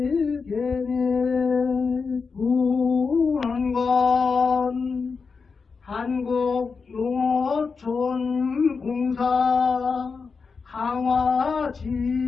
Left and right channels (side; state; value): right; quieter; 5.0 dB